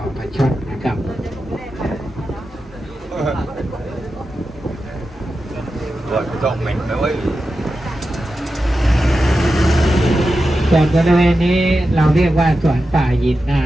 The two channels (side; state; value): both; normal; correlation 0.91